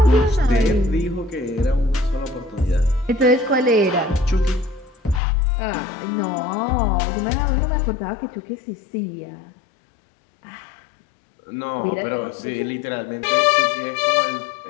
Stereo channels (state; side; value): drops out; right; at 5.2 s